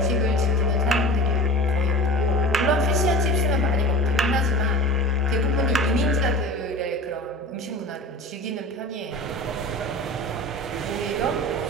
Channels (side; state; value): both; normal; correlation 0.37